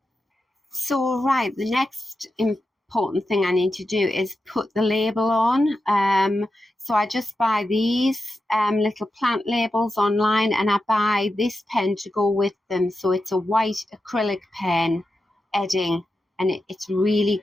So right, the next important thing I need to do is put the label on. So I just buy these little plant labels online, and I buy this pen to go with them. So it's a white acrylic pen, Edding, and it's really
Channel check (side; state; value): both; normal; correlation 0.90